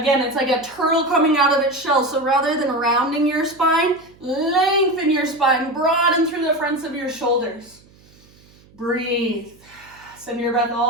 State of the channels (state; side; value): noise; right; hum, 28 dB below the sound